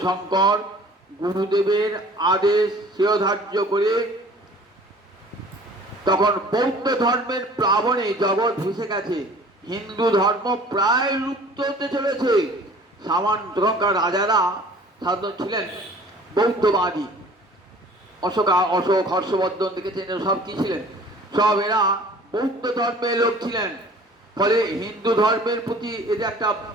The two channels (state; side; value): normal; both; correlation 0.49